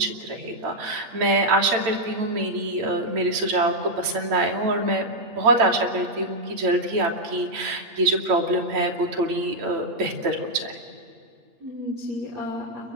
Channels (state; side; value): late; left; 8.6 ms